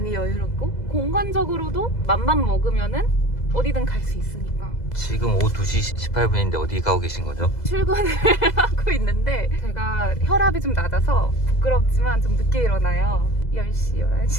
여유롭고 공간적으로도 맘만 먹으면은 어디든 갈 수 있으니까. 지금 오후 2시 18분인데 어디 가고 계신 거죠? 출근을 하고 있는데 제가 혈압이 좀 낮아서 부끄럽지만 좀 늦게 일어나요. 10시,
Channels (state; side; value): late; right; 2.0 ms